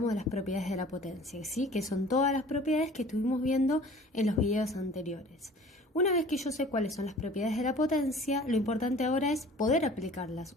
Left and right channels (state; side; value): normal; both; correlation 0.47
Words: de las propiedades de la potencia, ¿sí? Que son todas las propiedades que estuvimos viendo en los videos anteriores. Una vez que yo sé cuáles son las propiedades de la potencia, lo importante ahora es poder aplicarlas.